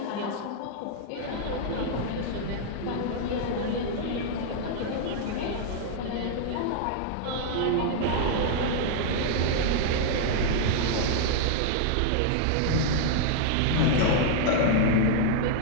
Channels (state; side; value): different; both; correlation -0.01